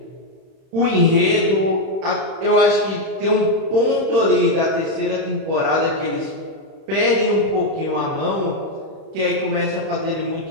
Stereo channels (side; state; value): left; late; 31 ms